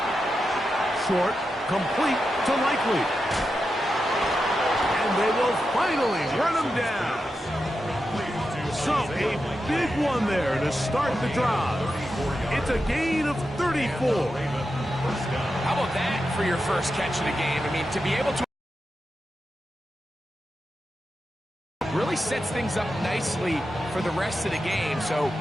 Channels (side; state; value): both; normal; correlation 0.89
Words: Short, complete to Likely. And they will finally run him down. So a big one there to start the drive. It's a gain of 34. How about that for your first catch of the game? I mean, to be able to really sets things up nicely for the rest of the game. So